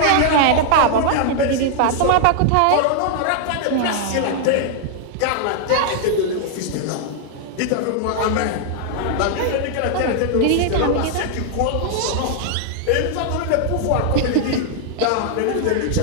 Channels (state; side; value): different; both; correlation 0.00